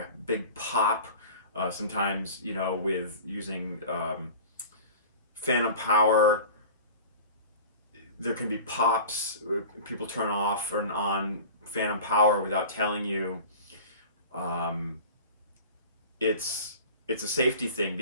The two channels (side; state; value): both; inverted; correlation -0.39